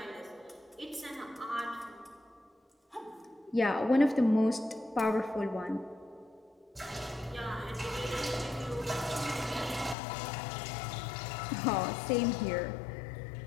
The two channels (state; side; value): drops out; right; at 10.0 s